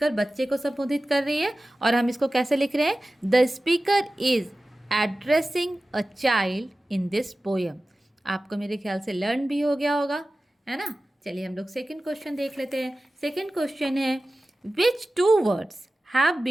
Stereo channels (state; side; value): normal; both; correlation 0.96